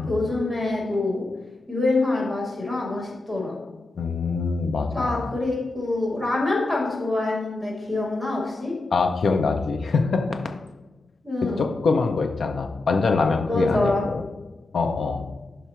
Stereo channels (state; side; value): quieter; right; 3.1 dB